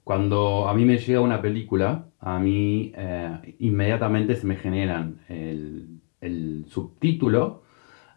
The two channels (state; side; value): quieter; right; 39.6 dB